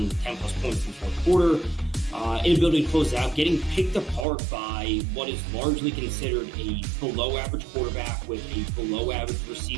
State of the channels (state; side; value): drops out; left; at 4.2 s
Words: 10 plus points in the fourth quarter, inability to close out, getting picked apart by what is largely considered a below average quarterback with a below average